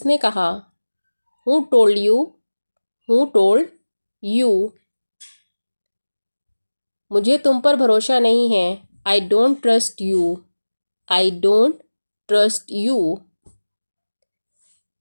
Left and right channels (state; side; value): inverted; both; correlation -1.00